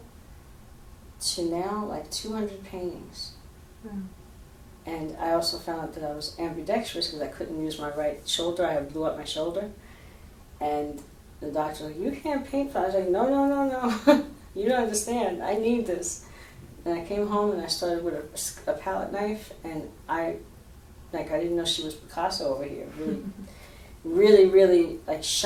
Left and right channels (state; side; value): identical; both; correlation 1.00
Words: to now like 200 paintings. Mm. And I also found out that I was ambidextrous because I couldn't use my right shoulder. I blew up my shoulder. And the doctor was like, you can't paint. I was like, no. You don't understand. I need this. And I came home and I started with a palette knife, and I didn't know she was Picasso over here. Really like